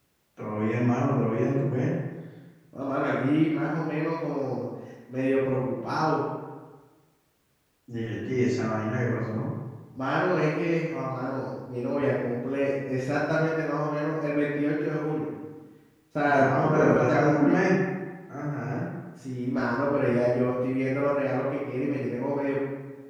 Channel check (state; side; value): identical; both; correlation 1.00